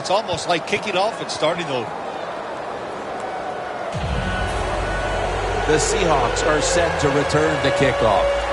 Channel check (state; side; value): identical; both; correlation 1.00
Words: almost like kicking off and starting over. The Seahawks are set to return the kickoff.